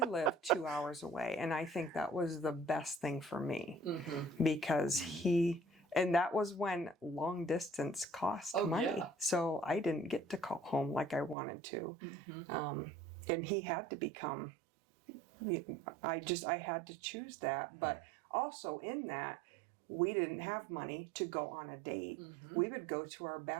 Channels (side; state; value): left; drops out; at 11.4 s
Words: lived 2 hours away, and I think that was the best thing for me because and that was when long distance cost money. Yeah. So I didn't get to call home like I wanted to. And he had to become, I had to choose that. But also in that, we didn't have money to go on a date. We would go to our